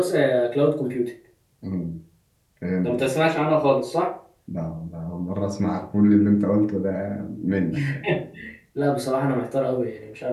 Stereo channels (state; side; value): identical; both; correlation 1.00